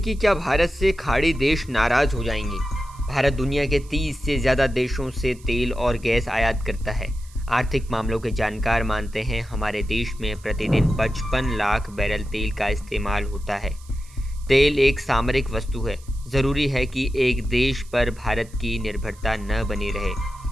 क्या भारत से खाड़ी देश नाराज हो जाएंगे? भारत दुनिया के 30 से ज़्यादा देशों से तेल और गैस आयात करता है। आर्थिक मामलों के जानकार मानते हैं हमारे देश में प्रतिदिन 55 लाख बैरल तेल का इस्तेमाल होता है। तेल एक सामरिक वस्तु है। ज़रूरी है कि एक देश पर भारत की निर्भरता न बनी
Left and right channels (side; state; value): right; noise; hiss, 25 dB below the sound